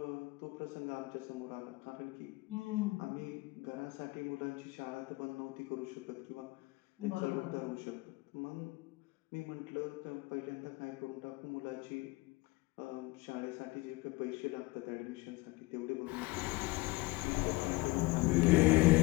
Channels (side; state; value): right; quieter; 22.4 dB